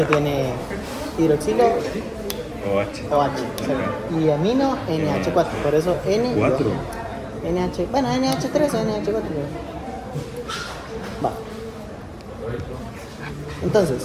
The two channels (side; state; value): both; identical; correlation 1.00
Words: tiene hidroxilo OH. OH, exacto, y amino NH4, por eso N y ¿Cuatro? O. NH, bueno, NH3 o NH4. Va.